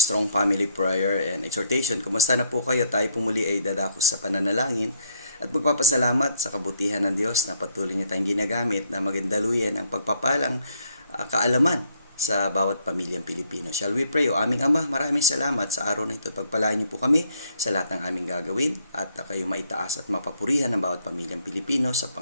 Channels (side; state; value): both; inverted; correlation -0.68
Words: Family Prayer and Exhortation. Kumusta na po kayo? Tayo po muli ay dadako sa pananalangin at magpapasalamat sa kabutihan ng Diyos na patuloy niya tayong ginagamit na magandaluyan ang pagpapalang kaalaman sa bawat pamilyang Pilipino. Shall we pray? O aming Ama, maraming salamat sa araw na ito. Pagpalain niyo po kami sa lahat ng aming gagawin at kayo maitaas at mapapurihan ng bawat pamilyang Pilipino sa